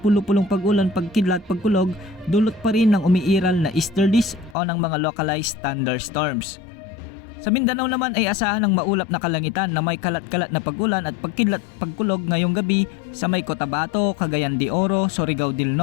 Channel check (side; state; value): right; drops out; at 4.5 s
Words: pag-ulan pagkidlat pagkulog dulot pa rin ng umiiral na easterlies o ng mga localized thunderstorms. Sa Mindanao naman ay asahan ng maulap na kalangitan na may kalat-kalat na pag-ulan at pagkidlat pagkulog ngayong gabi sa may Cotabato, Cagayan de Oro, Surigao del